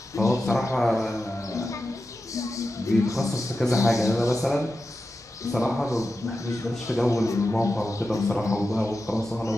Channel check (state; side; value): normal; both; correlation 0.91